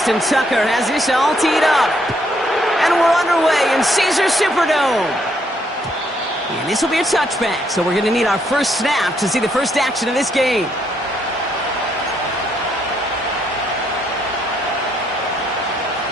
Tucker has this all teed up. And we're underway in Caesars Superdome. And this will be a touchback, so we're going to need our first snap to see the first action of this game.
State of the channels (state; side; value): normal; both; correlation 0.72